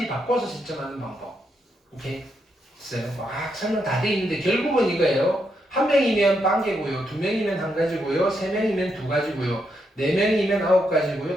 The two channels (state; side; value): normal; both; correlation 0.80